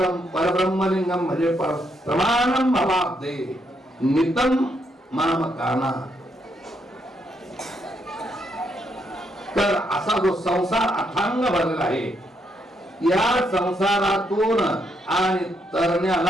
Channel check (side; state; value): both; normal; correlation 0.76